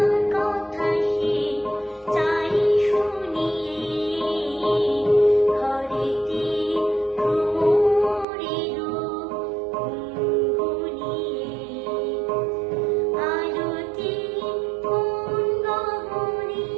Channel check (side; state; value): left; drops out; at 8.2 s